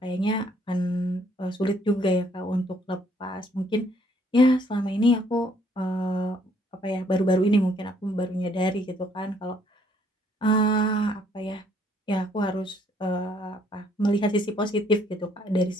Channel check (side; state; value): both; normal; correlation 0.65